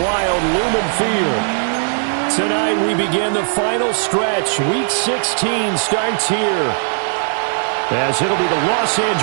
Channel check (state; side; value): silent; left; digital silence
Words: wild Lumen Field. Tonight we begin the final stretch. Week 16 starts here as it'll be the Los